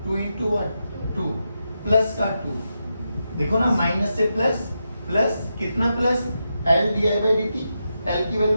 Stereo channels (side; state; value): both; inverted; correlation -0.87